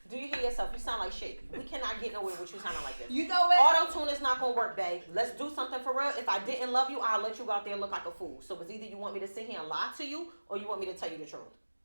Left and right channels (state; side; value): inverted; both; correlation -1.00